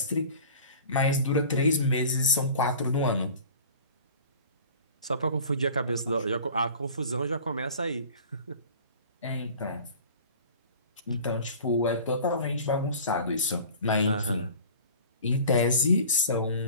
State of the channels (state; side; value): inverted; both; correlation -0.43